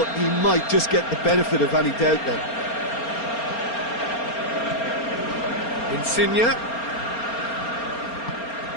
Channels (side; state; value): right; late; 4.3 ms